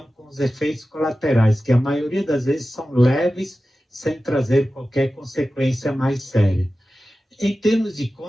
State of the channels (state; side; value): normal; both; correlation 0.94